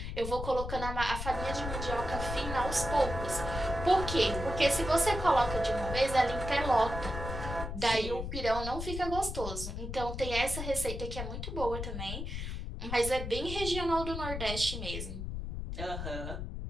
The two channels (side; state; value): left; noise; rumble, 5 dB below the sound